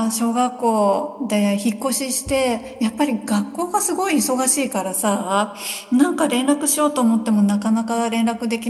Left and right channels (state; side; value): identical; both; correlation 1.00